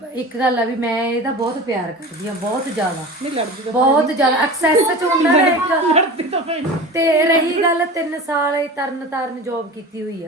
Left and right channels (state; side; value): normal; both; correlation 0.34